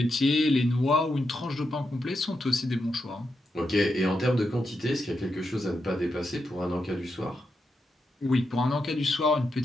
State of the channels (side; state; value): both; normal; correlation 0.85